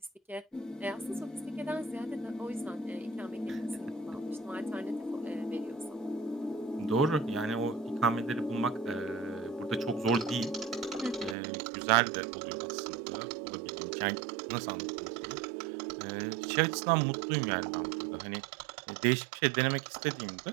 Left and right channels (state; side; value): drops out; left; at 11.4 s